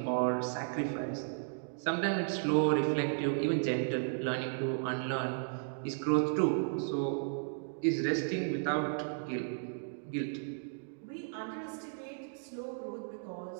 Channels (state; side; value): silent; left; digital silence